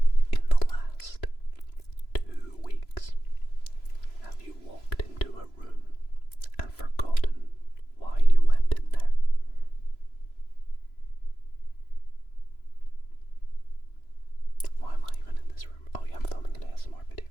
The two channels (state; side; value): late; right; 3.0 ms